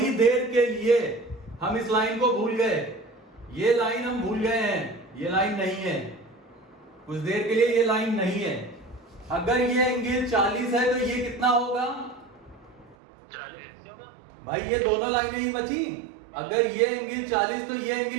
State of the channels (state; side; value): drops out; left; at 13.0 s